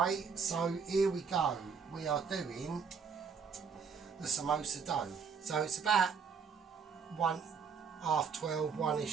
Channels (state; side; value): quieter; left; 6.0 dB